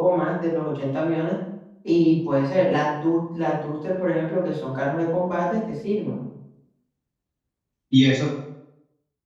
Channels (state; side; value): identical; both; correlation 1.00